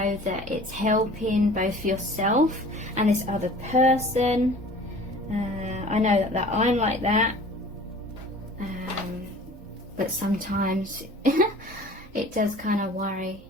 that it's helping both yourself and this other person. I know that I'm like that. But sometimes it does kind of worry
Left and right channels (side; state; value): both; normal; correlation 0.46